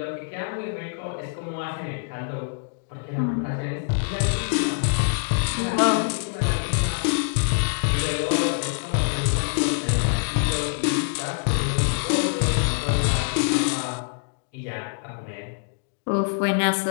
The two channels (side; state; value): right; silent; digital silence